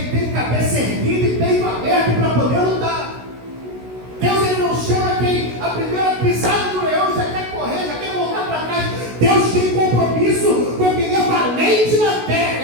tem cabeça erguida e peito aberto para poder lutar. Deus ele não chama quem a primeira pisada do leão já quer correr, já quer voltar para trás. Deus tem compromisso com quem é valente na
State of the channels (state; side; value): late; left; 16 ms